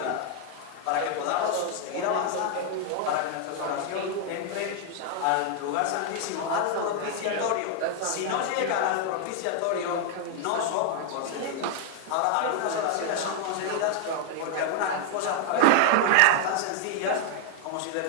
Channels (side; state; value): both; different; correlation 0.00